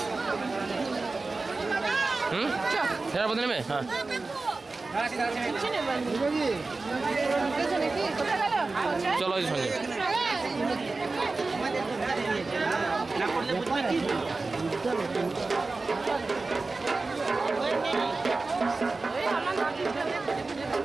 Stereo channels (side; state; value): left; quieter; 3.7 dB